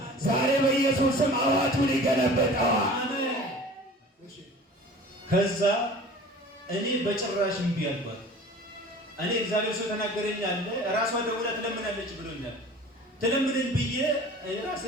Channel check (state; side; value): normal; both; correlation 0.43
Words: ዛሬ በኢየሱስም አዋጁን ይገለበጠዋል። ከዛ እኔ በጭራሽ እምቢ አልኳት። እኔ እግዚአብሔር ሰው ተናገረኝ አለ፣ ራሷ ደውላ ትለምናለች ብሎኛል። ትለምነኝ ብዬ